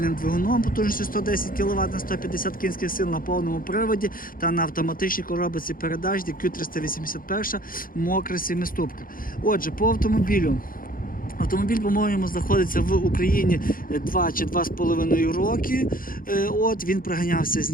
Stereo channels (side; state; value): right; late; 0.41 ms